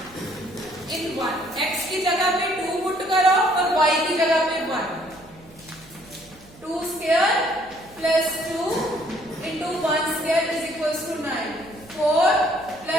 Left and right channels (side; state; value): right; noise; hum, 24 dB below the sound